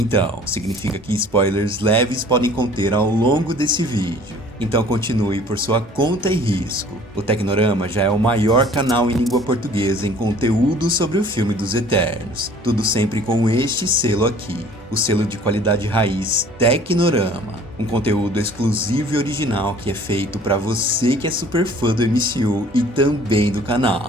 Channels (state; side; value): normal; both; correlation 0.51